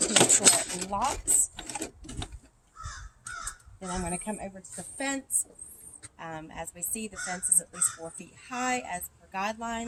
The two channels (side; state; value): both; identical; correlation 1.00